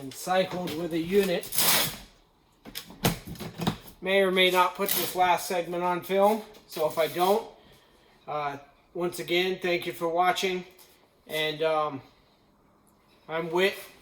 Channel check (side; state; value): both; identical; correlation 1.00